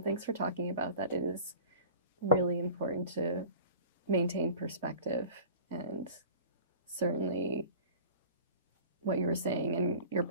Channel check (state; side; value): inverted; both; correlation -0.43